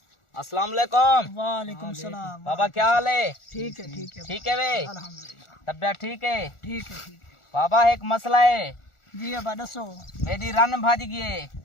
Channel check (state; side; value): late; right; 1.4 ms